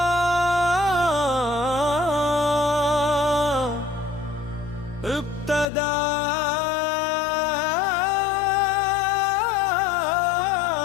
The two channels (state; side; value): drops out; right; at 5.7 s